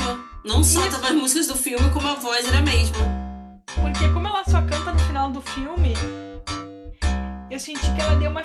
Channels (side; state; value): both; identical; correlation 1.00